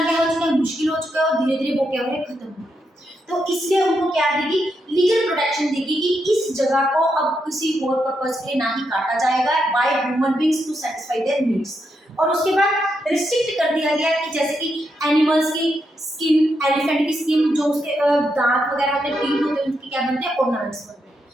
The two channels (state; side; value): normal; both; correlation 0.82